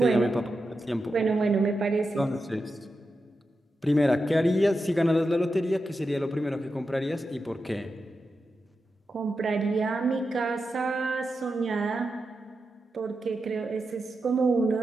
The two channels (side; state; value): both; normal; correlation 0.89